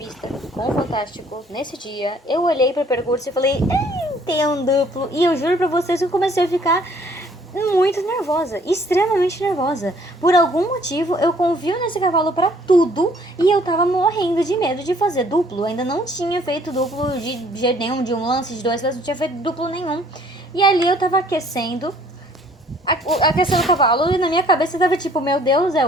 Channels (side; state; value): both; normal; correlation 0.59